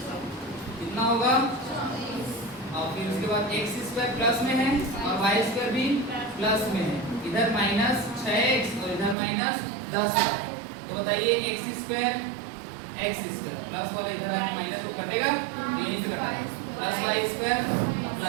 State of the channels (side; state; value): left; drops out; at 9.2 s